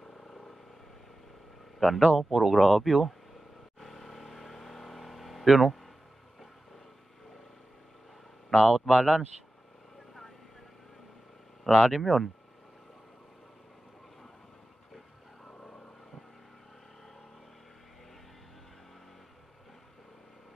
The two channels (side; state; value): both; normal; correlation 0.94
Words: Ganda, oh, puro grabe, oh. Yun, oh. Na-out balance. Lalim yun.